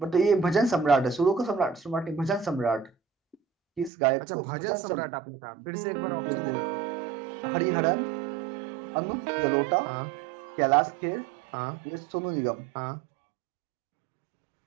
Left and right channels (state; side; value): drops out; left; at 3.9 s